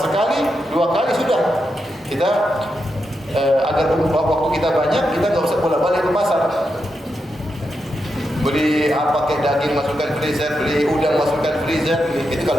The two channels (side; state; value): both; normal; correlation 0.85